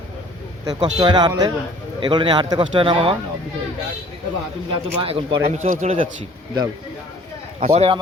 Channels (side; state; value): both; normal; correlation 0.53